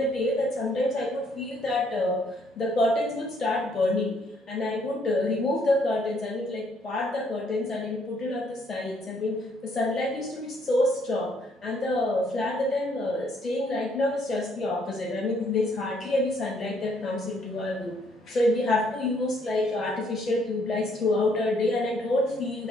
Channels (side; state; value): both; normal; correlation 0.68